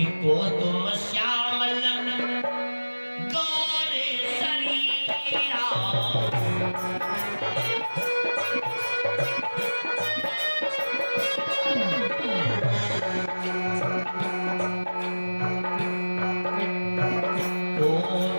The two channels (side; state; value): both; inverted; correlation -1.00